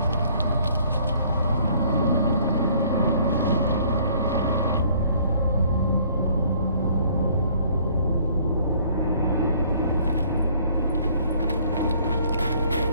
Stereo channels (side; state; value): both; inverted; correlation -0.59